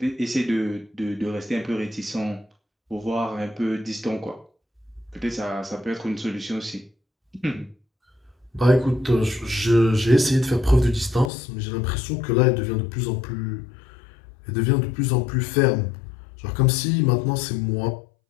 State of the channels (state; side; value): drops out; right; at 11.3 s